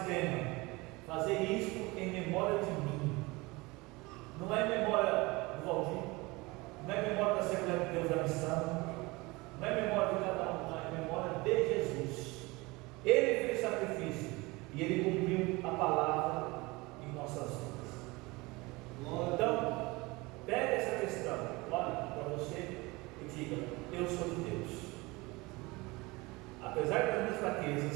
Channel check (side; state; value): left; quieter; 23.5 dB